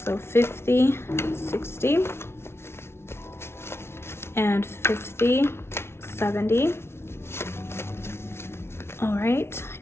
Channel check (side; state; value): right; late; 0.12 ms